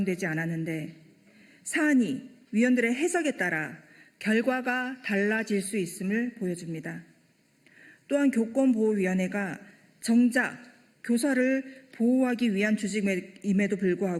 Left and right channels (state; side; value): identical; both; correlation 1.00